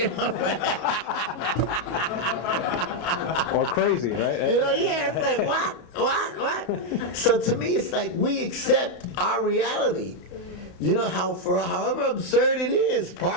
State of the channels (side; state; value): right; late; 33 ms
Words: know? Or crazy, right? You know, yeah, it's like, what? So to me, it's like we accept our reality. You know, however absurd it is,